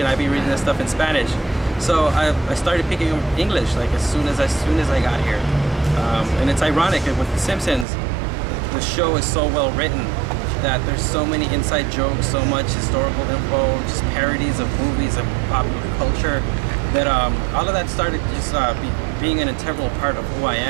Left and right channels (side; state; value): left; drops out; at 7.9 s